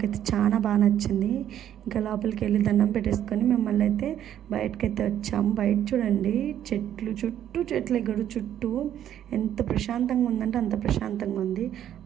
చాలా బాగా నచ్చింది. ఇంకా లోపలికి వెళ్ళి దండం పెట్టేసుకొని మిమ్మల్ని అయితే బయటకైతే వచ్చాము. బయట చూడండి, చెట్లు ఎగడు చుట్టూ ఎంత ప్రశాంతంగా ఉందంటే అంత ప్రశాంతంగా ఉంది.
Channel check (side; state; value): left; quieter; 10.7 dB